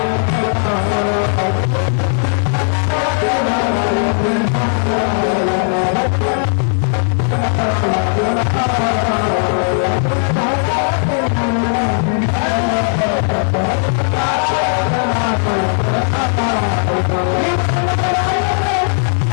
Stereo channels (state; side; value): silent; right; 64 dB below the other